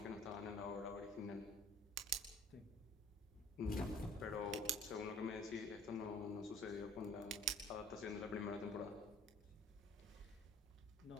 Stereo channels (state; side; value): normal; both; correlation 0.52